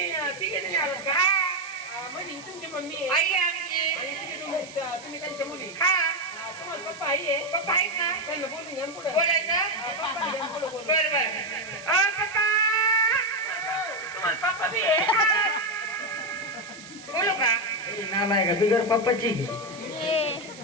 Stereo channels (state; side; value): noise; right; hiss, 18 dB below the sound